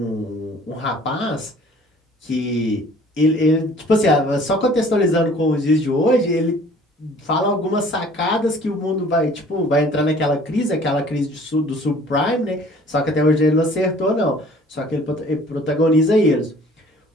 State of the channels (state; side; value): normal; both; correlation 0.52